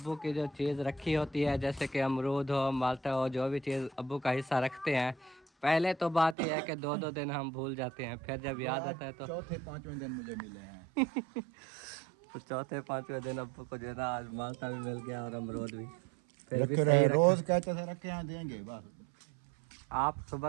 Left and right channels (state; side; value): drops out; left; at 6.4 s